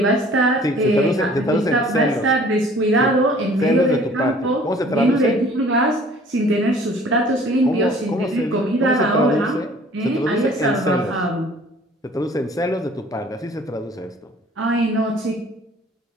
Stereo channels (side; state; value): both; normal; correlation 0.52